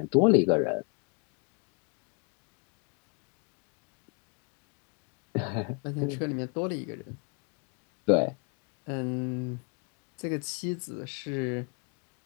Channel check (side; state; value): right; quieter; 35.7 dB